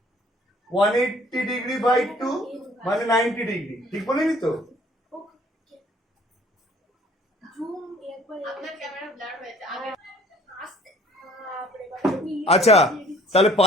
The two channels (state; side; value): normal; both; correlation 0.54